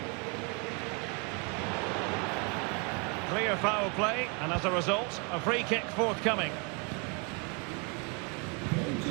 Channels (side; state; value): left; quieter; 33.7 dB